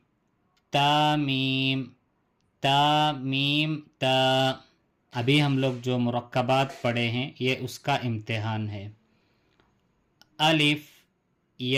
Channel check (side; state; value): both; identical; correlation 1.00